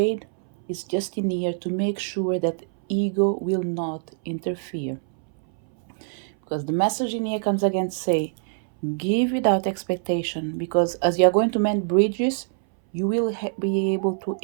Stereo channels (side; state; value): left; silent; 62 dB below the other